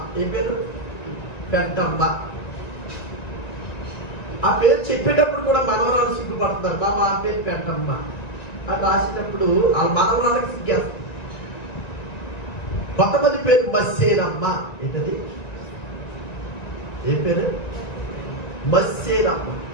ఏ పేరు? పెంటమ్మ. ఆ పేరు చెప్పేటప్పుడు కూడా మనవరాలు సిగ్గుపడుతున్నారు. బాబా ఆ పేరు పెంటమ్మ అని రాసేటప్పుడు ఆ మనవరాలకు సిగ్గేస్తారు. కొంతమంది పేరు మస్సేనమ్మ. ఏంటది? ఏ పేరు? మస్సేనమ్మ.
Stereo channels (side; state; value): right; late; 1.9 ms